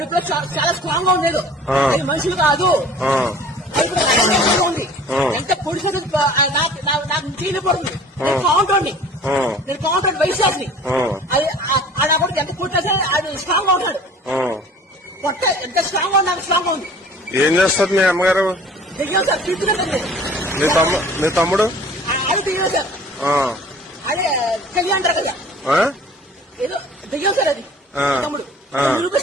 చాలా స్ట్రాంగ్ గా ఉండేది. అది మనుషులు కాదు. ఉంది ఎంత పొడిసే నాకు చేయలేకపోతుంది. నేను కౌంటర్ని వైశాఖని అది ఆడ కూడా ఎంత కొట్టేసా అది స్ట్రాంగ్ గా ఉంటాడు. పొట్ట ఎంత స్ట్రాంగ్ గా నాకు స్ట్రాంగ్ గా ఉంది. ఏం చేస్తారు మీ అమ్మగారు? దిగాం సార్, తీసుకున్నాను. మీ తమ్ముడు అది దిగాం సార్. అదే కలిగి అంటారు కదా, ఏదో దిగాం సార్. అది తమ్ముడు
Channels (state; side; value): normal; both; correlation 0.47